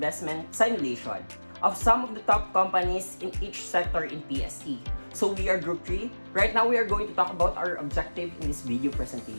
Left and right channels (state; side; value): inverted; both; correlation -1.00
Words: simulation of some of the top companies in each sector in PSE. So we are Group 3. Right now we are going to talk about our objective in this video